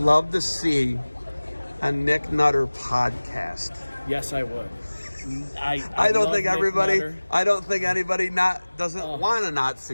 to see a Nick Nutter podcast? Yes, I would. I don't think everybody. I don't think anybody doesn't want to not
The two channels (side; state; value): both; inverted; correlation -1.00